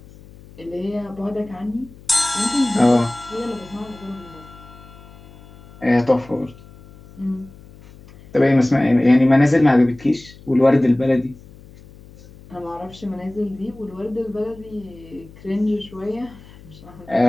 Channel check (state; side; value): noise; left; hum, 21 dB below the sound